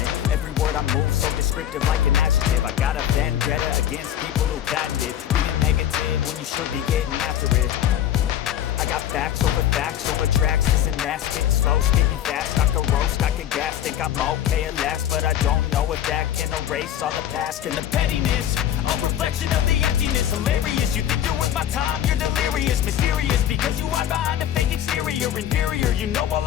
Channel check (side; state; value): right; quieter; 11.0 dB